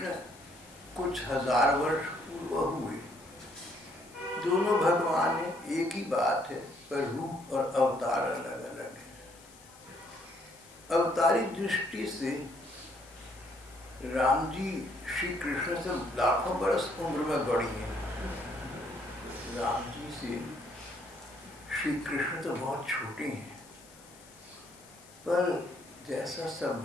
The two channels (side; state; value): left; noise; hiss, 23 dB below the sound